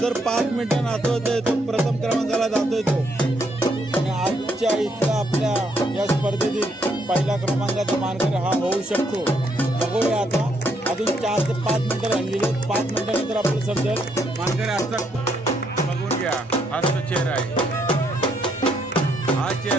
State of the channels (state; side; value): normal; both; correlation 0.73